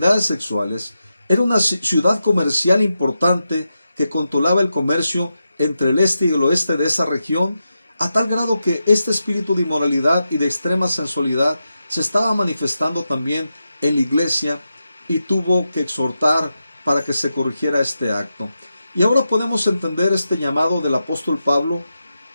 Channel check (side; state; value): both; inverted; correlation -0.89